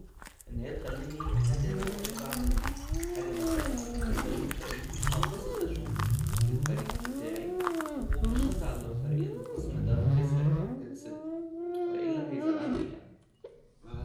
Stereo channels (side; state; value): both; identical; correlation 1.00